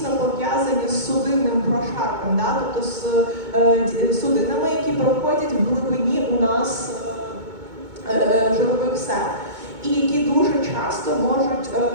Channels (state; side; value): late; left; 2.2 ms